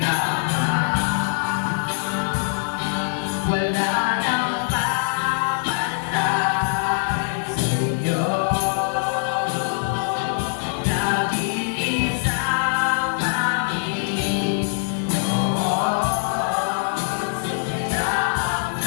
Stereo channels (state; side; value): silent; right; digital silence